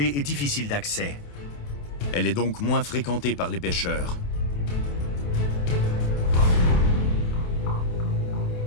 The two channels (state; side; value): late; right; 28 ms